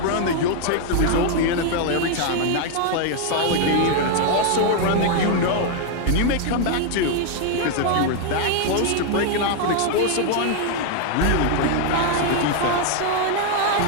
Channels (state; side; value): different; both; correlation 0.01